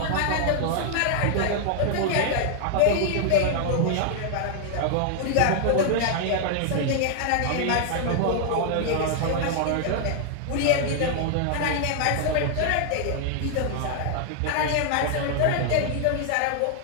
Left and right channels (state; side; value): different; both; correlation 0.00